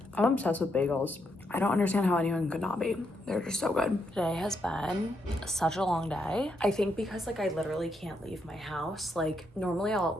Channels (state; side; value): normal; both; correlation 0.79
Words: I'm obsessed with bagels. I don't understand how anyone could not be. They're just so good. Today has been such a long day. I think because like I literally can't leave my house. Like normally I'll at